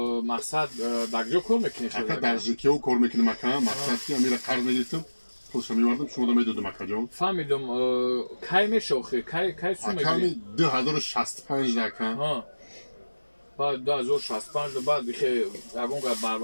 مقصد دکجو کار میکنی اکا درجه و کار میکنم اکا مقصد که امیره قرض میگرفتم پولش میوردم شما میدادم اکا جان فهمیدم کی میشوخی کی سو میگیری اکا 2065 اکا بعد 2065 بعد که اون بر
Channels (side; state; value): both; inverted; correlation -1.00